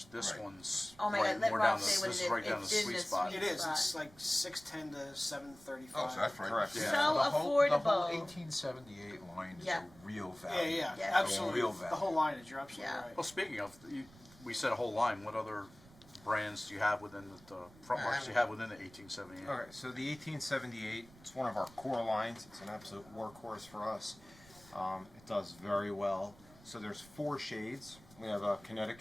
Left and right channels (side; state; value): right; noise; rumble, 23 dB below the sound